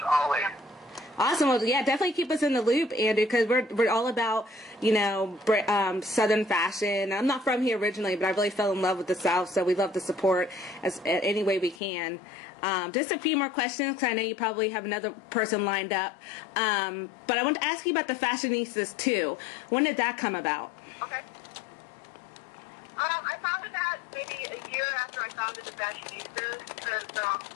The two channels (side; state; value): right; drops out; at 11.8 s